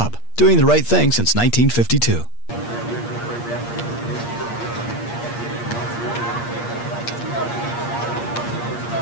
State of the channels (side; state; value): right; late; 8.5 ms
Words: doing the right thing since 1952.